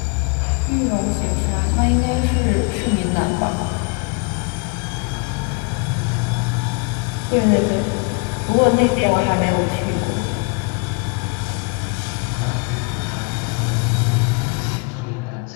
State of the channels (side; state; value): right; quieter; 33.5 dB